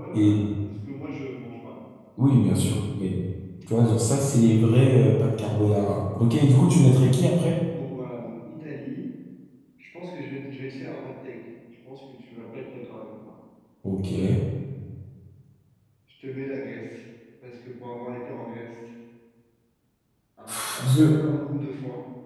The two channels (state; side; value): identical; both; correlation 1.00